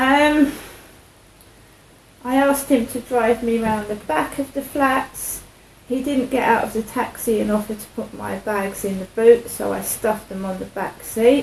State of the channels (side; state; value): both; identical; correlation 1.00